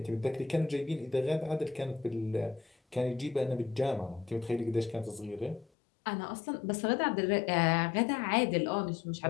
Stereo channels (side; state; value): right; drops out; at 5.7 s